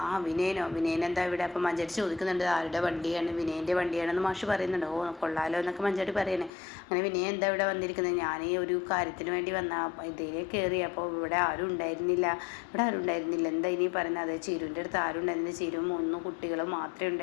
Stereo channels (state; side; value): drops out; right; at 6.5 s